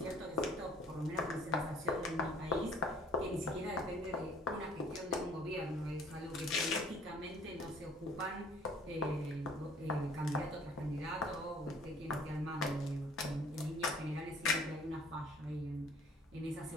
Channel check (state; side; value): normal; both; correlation 0.55